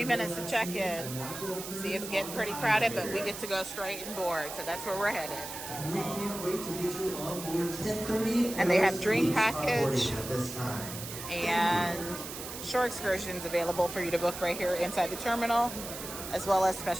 minutes to check in. See, it's getting pretty crowded, but we get to go straight and board, so that's where we're headed. We can't wait to get you on board 10:30. And they have drink package At this time. and shore excursions available for you to book right here inside the terminal, as well as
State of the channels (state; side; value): noise; right; hiss, 9 dB below the sound